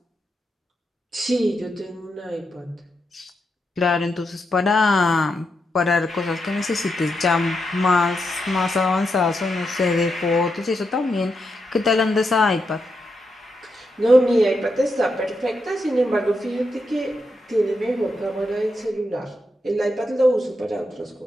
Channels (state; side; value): normal; both; correlation 0.84